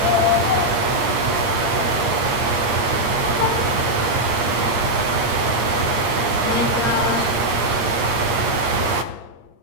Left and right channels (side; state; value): left; late; 8.6 ms